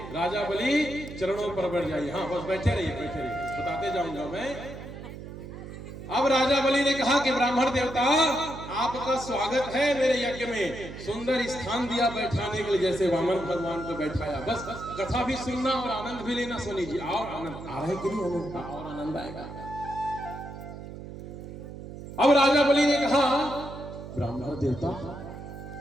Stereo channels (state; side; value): noise; right; hum, 11 dB below the sound